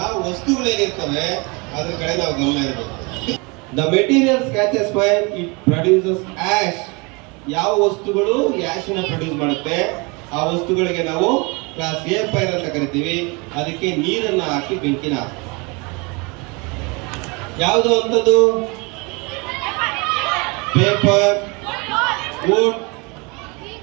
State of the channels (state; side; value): quieter; left; 28.8 dB